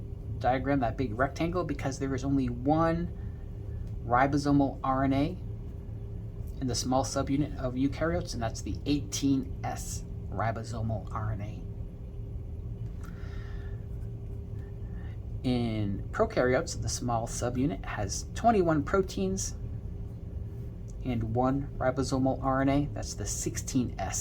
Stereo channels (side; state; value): both; identical; correlation 1.00